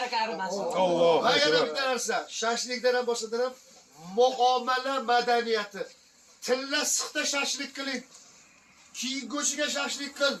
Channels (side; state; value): both; identical; correlation 1.00